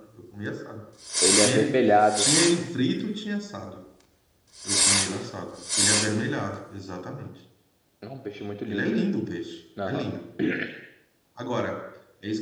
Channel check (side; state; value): both; identical; correlation 1.00